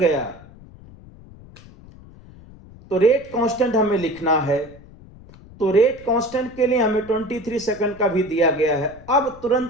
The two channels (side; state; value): left; noise; rumble, 21 dB below the sound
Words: तो रेट कांस्टेंट हमें लिखना है, तो रेट कांस्टेंट के लिए हमें 23 सेकंड का भी दिया गया है। अब